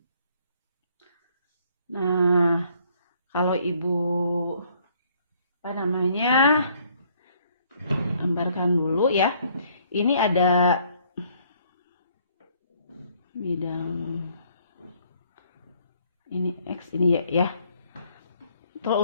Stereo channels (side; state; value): both; inverted; correlation -0.64